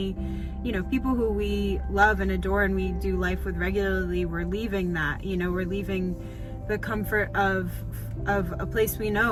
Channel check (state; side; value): identical; both; correlation 1.00